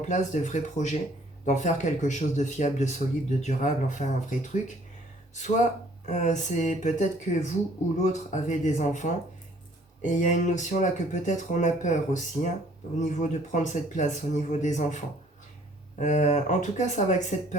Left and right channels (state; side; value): normal; both; correlation 0.59